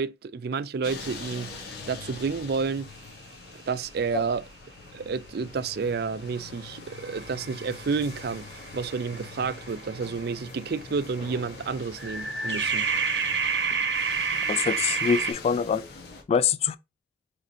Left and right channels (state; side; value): normal; both; correlation 0.13